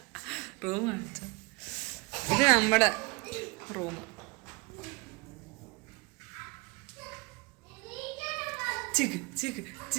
റൂം കാണിച്ച ഇത് നമ്മുടെ റൂം. ചിക്ക് ചിക്ക്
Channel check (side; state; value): left; quieter; 27.4 dB